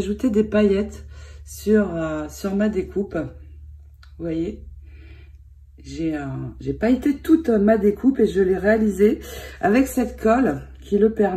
des paillettes sur ma découpe. Vous voyez, j'ai pailleté toute ma découpe et je l'ai réalisée avec cette colle qui le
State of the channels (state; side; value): identical; both; correlation 1.00